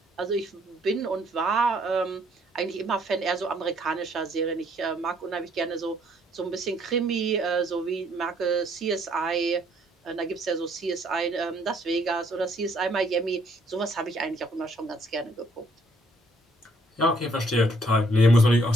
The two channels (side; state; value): both; normal; correlation 0.66